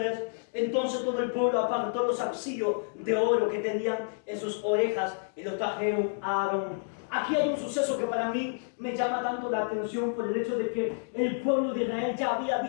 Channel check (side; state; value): right; silent; digital silence